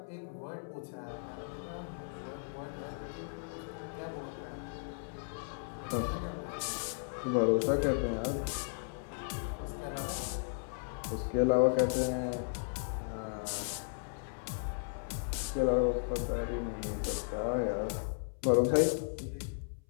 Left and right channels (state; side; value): silent; right; 54 dB below the other